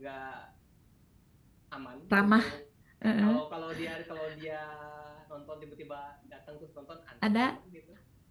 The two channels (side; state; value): both; identical; correlation 1.00